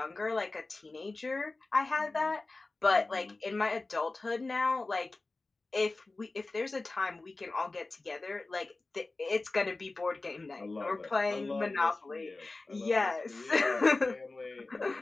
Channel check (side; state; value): right; quieter; 3.3 dB